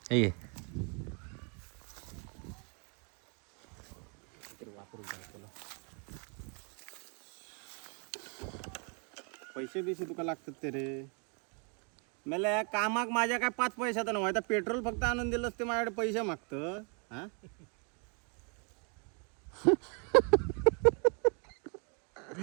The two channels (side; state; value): left; quieter; 36.9 dB